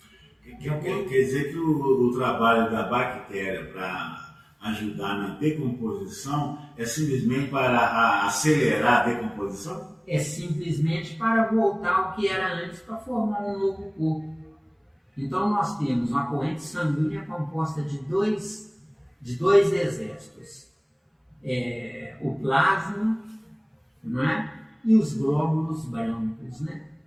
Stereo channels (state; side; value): identical; both; correlation 1.00